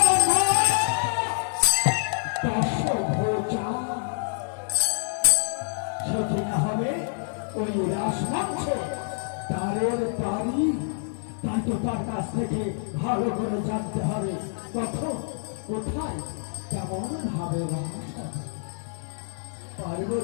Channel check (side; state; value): right; silent; digital silence